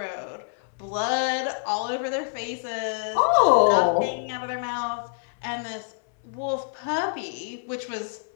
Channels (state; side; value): silent; right; 61 dB below the other